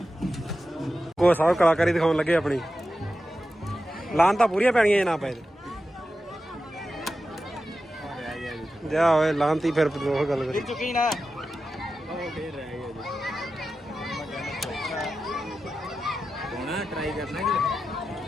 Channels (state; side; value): normal; both; correlation 0.92